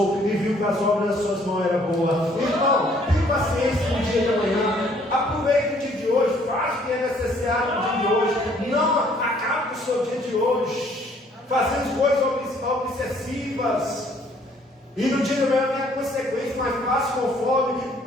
e viu que as obras das suas mãos eram boas. Então, tenha paciência no dia de amanhã, aproveite o dia de hoje, faça o que é necessário no dia de hoje, não acabe com o seu dia de hoje, fazendo coisas obsessivas. E no dia de amanhã vem a consequência, mas faça conforme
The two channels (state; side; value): normal; both; correlation 0.62